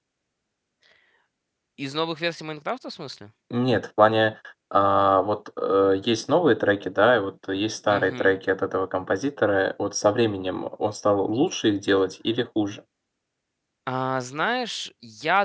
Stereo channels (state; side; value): identical; both; correlation 1.00